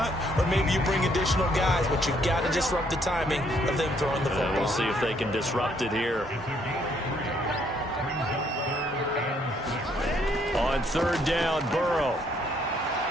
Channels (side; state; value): both; normal; correlation 0.68